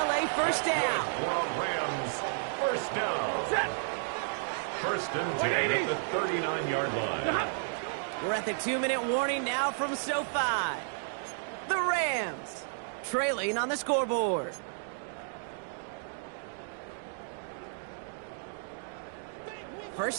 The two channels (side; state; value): left; silent; digital silence